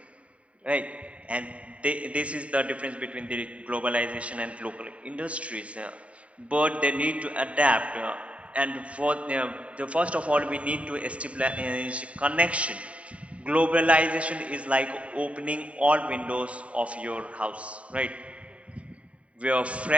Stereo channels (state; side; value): late; left; 0.065 ms